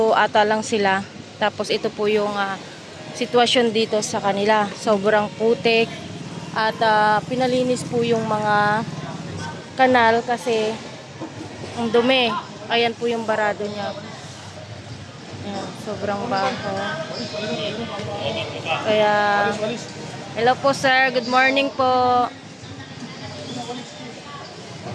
ata lang sila. Tapos ito po yung sitwasyon dito sa kanila. Sobrang putik. At pinalinis po yung mga kanal kasi ang dumi. Ayan po yung barado niya. Ayan, sobrang baho. Kaya, hello po sir, good morning po.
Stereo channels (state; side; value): identical; both; correlation 1.00